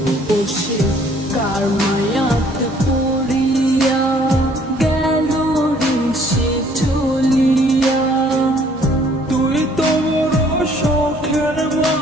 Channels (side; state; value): both; normal; correlation 0.60